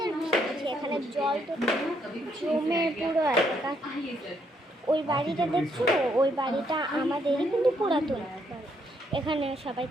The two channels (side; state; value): both; normal; correlation 0.73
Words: বৃষ্টি পড়ছে। এখানে জল তো জমে পুরো এলাকা। ওই বাড়িটা দেখছো, ওই বাড়িটা আমাদেরই কিন্তু পুরাতন। এখানে সবাই